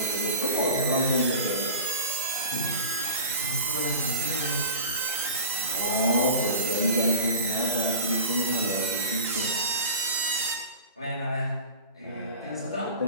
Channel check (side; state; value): both; inverted; correlation -0.35